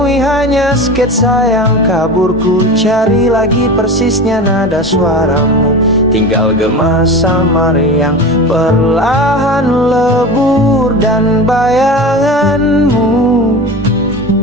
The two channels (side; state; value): both; normal; correlation 0.30